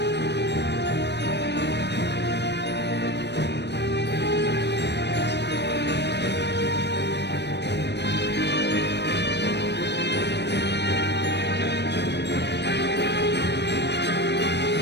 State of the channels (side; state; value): right; late; 0.50 ms